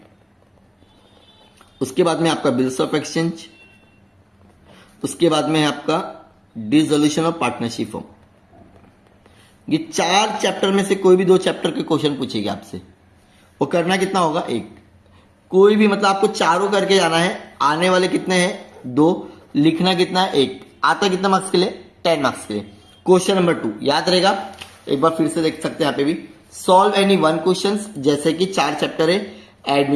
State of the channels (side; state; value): both; identical; correlation 1.00